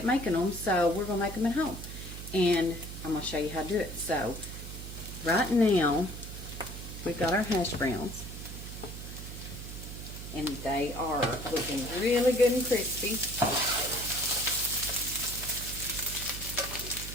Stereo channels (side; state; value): right; noise; hum, 10 dB below the sound